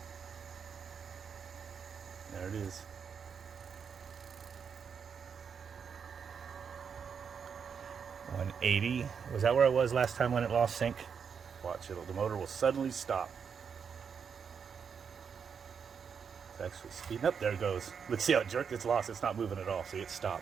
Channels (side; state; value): left; quieter; 6.6 dB